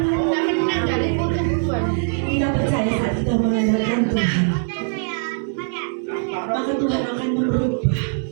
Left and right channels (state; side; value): silent; left; digital silence